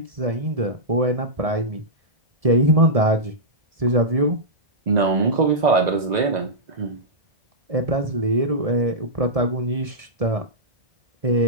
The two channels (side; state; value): left; late; 1.7 ms